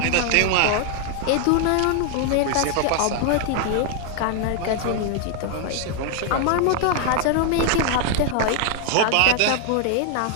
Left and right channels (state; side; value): different; both; correlation 0.00